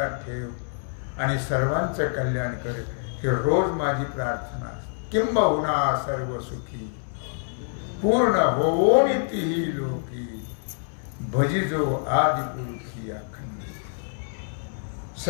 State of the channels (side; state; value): right; silent; 61 dB below the other